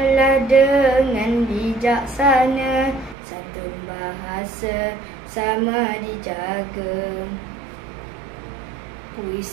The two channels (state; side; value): drops out; left; at 3.2 s